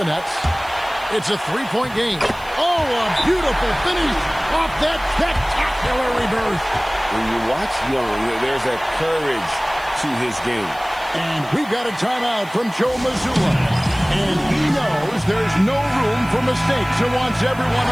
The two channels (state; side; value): noise; right; hiss, 22 dB below the sound